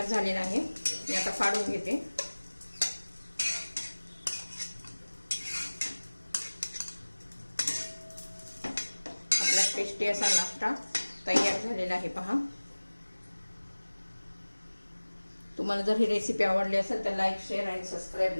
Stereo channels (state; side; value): inverted; both; correlation -1.00